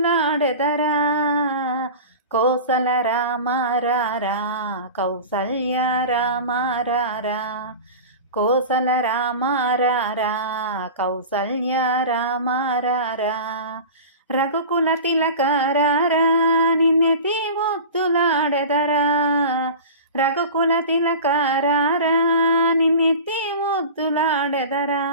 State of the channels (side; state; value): both; inverted; correlation -0.33